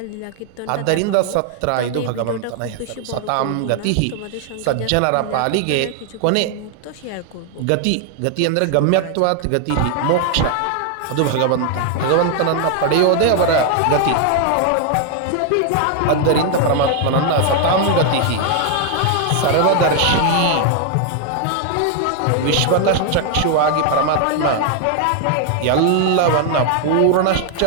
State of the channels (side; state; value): both; different; correlation 0.00